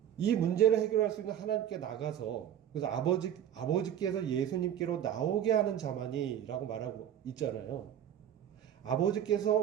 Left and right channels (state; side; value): quieter; left; 10.2 dB